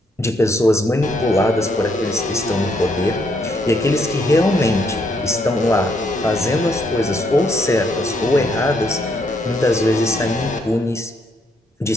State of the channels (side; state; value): both; normal; correlation 0.73